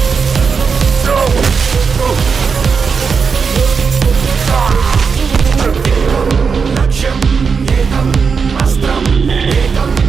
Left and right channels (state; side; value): quieter; left; 5.6 dB